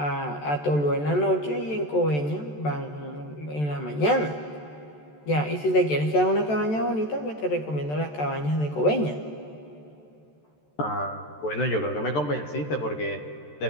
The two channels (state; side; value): late; right; 14 ms